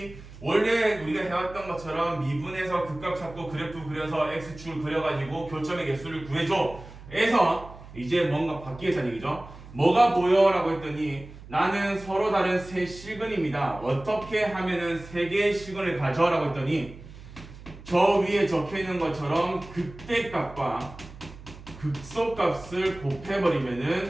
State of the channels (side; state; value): right; noise; hum, 17 dB below the sound